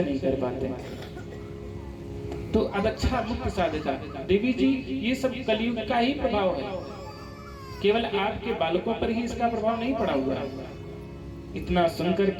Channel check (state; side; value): identical; both; correlation 1.00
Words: नहीं कर पाते। तो अदक्षा मुक्ति साधका। देवी जी, ये सब कलयुग का ही प्रभाव है, केवल आपके बालकों पर ही इसका प्रभाव नहीं पड़ा हुआ है। इतना सुनकर